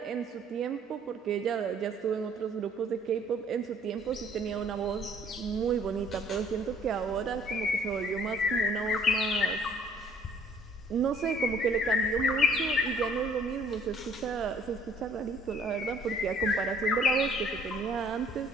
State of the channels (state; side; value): normal; both; correlation 0.59